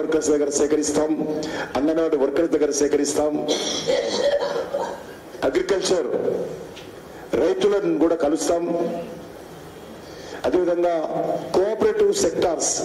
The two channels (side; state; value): both; identical; correlation 1.00